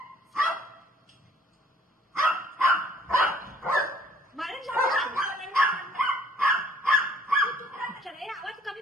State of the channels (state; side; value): normal; both; correlation 0.58